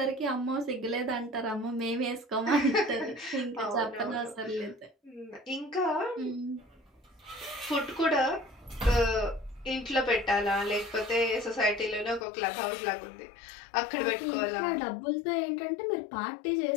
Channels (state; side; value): drops out; right; at 12.2 s